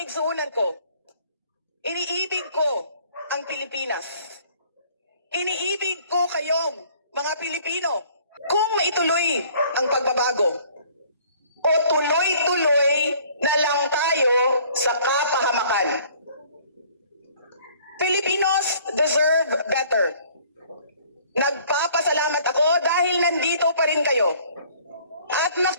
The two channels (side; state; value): both; inverted; correlation -0.56